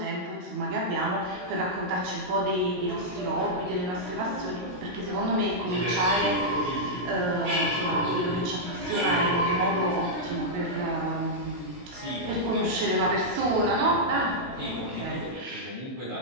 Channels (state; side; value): late; left; 17 ms